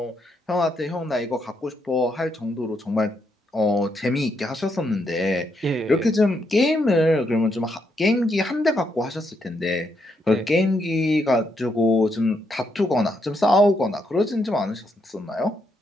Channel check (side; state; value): both; normal; correlation 0.78